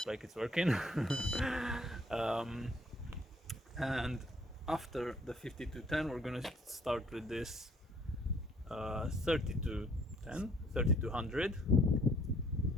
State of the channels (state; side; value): normal; both; correlation 0.62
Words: like it's working. um, and after the 5210 we're gonna start with this 3200.